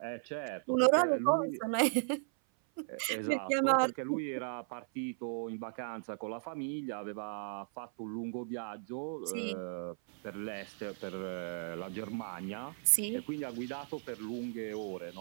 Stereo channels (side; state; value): left; silent; 54 dB below the other